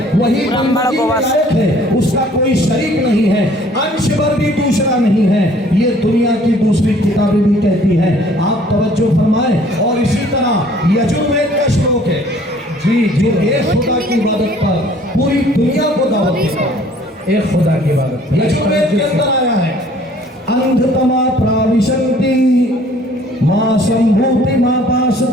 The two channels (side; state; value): both; normal; correlation 0.56